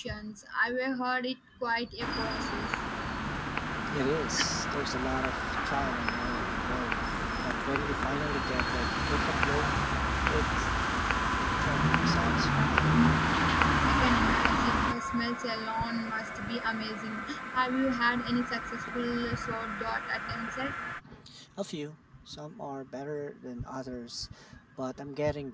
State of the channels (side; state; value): both; identical; correlation 1.00